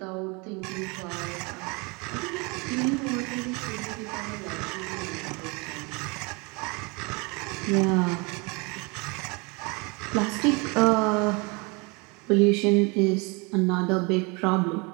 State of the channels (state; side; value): quieter; left; 29.1 dB